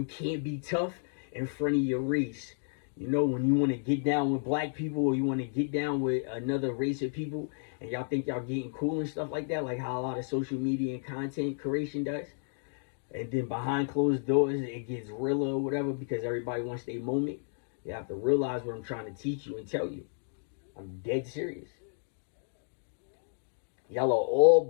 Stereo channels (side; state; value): right; silent; digital silence